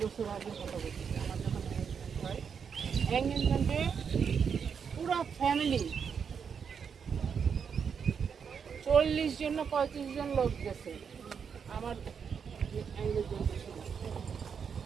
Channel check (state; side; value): quieter; left; 6.7 dB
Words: বছর আগে কথা বলছি, আমার যখন এঙ্গেজমেন্ট হয়, এঙ্গেজমেন্টে পুরো ফ্যামিলি 40 জন না 35 জন লোক গেছে আমার এঙ্গেজমেন্টের সময়।